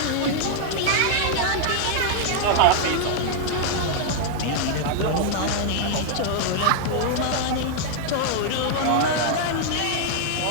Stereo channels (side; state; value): both; different; correlation 0.00